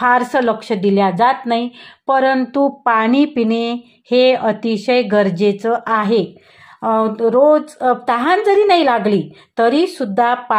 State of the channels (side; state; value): both; identical; correlation 1.00